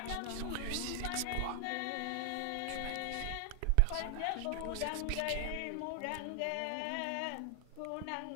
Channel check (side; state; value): both; different; correlation 0.00